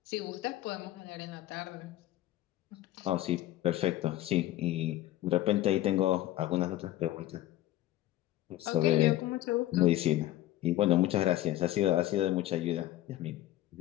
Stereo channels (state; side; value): quieter; right; 14.8 dB